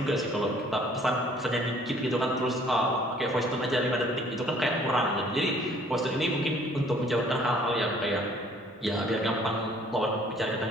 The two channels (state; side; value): normal; both; correlation 0.58